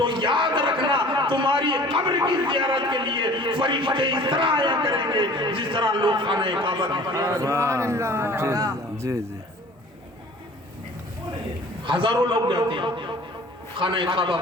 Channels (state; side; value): normal; both; correlation 0.47